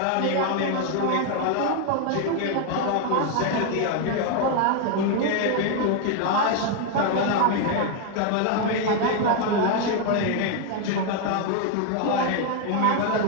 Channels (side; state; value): both; different; correlation 0.01